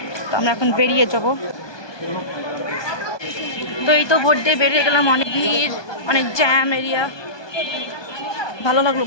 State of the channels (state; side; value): late; right; 1.2 ms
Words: তো আমরা এখন বেরিয়ে যাব। তো এই তো ভোট দিয়ে বেরিয়ে গেলাম, অনেক ভিড়, অনেক জ্যাম এরিয়া। ভালো লাগলো